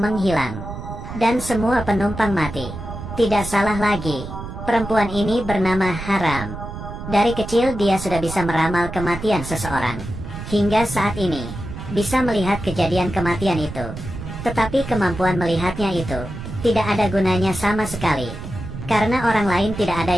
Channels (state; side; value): noise; right; rumble, 9 dB below the sound